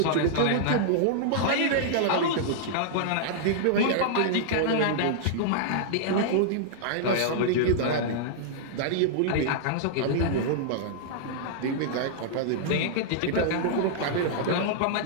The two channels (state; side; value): different; both; correlation -0.01